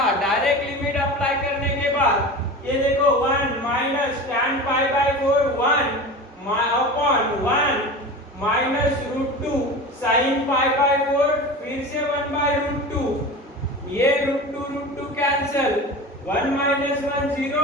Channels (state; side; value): normal; both; correlation 0.32